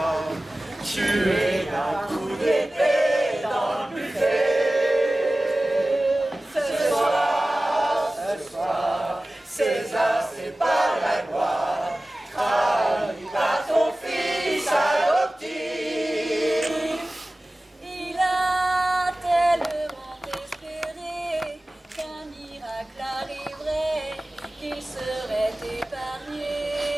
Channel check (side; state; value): both; normal; correlation 0.97